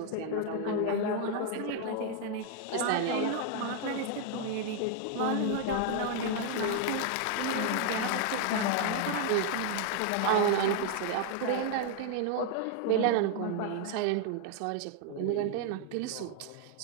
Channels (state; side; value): different; both; correlation 0.00